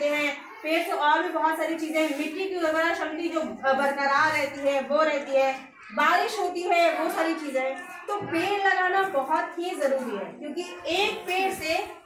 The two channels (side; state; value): both; identical; correlation 1.00